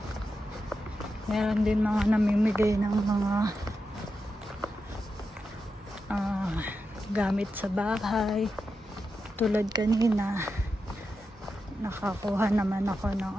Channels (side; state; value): both; normal; correlation 0.88